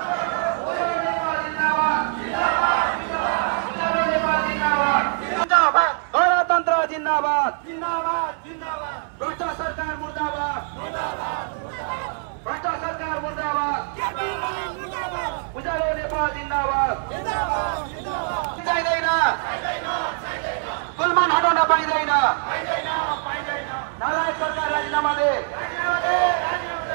गणतन्त्र जिन्दाबाद, भ्रष्ट सरकार मुर्दाबाद, भ्रष्ट सरकार मुर्दाबाद, उज्यालो नेपाल जिन्दाबाद, चाहिँदैन, पुलमान हटाउन पाइँदैन, नालायक सरकार राजीनामा दे,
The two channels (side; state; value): left; silent; 63 dB below the other